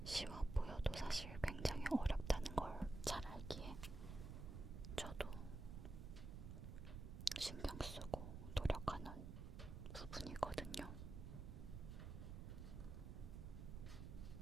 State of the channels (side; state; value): right; noise; rumble, 7 dB below the sound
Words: 쉬워 보여도 사실 굉장히 어렵다는 걸 잘 알기에 저도 신경 쓰고 노력하는 부분이거든요.